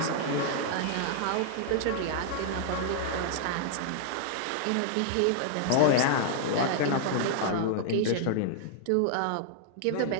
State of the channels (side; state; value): both; different; correlation 0.00